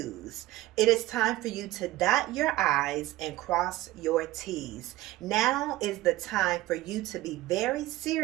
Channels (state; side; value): quieter; left; 17.1 dB